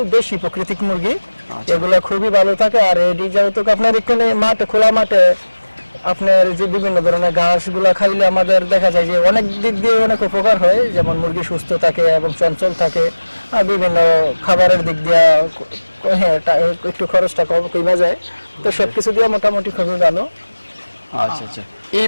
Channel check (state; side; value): inverted; both; correlation -1.00